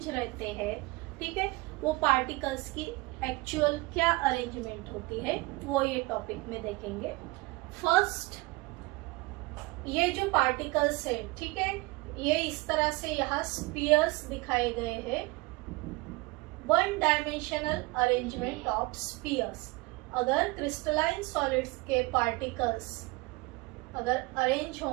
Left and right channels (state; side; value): quieter; left; 23.6 dB